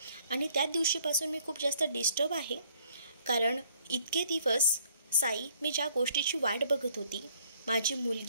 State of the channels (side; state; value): both; inverted; correlation -0.63